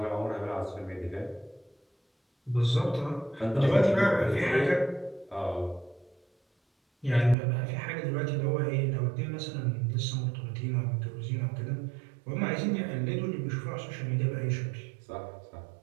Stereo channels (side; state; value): left; drops out; at 7.4 s